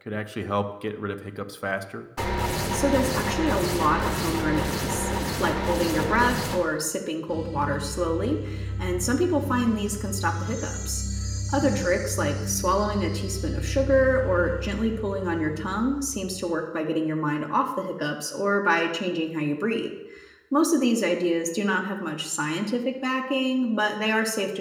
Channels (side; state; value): both; identical; correlation 1.00